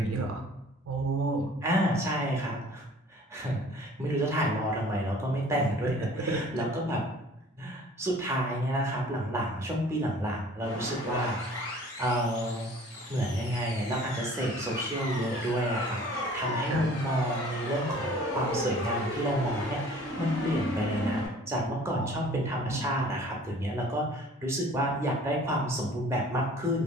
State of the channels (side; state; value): both; normal; correlation 0.50